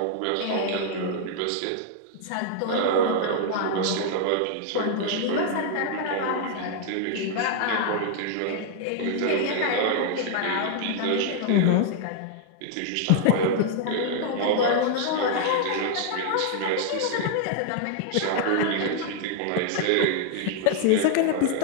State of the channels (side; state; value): both; different; correlation 0.00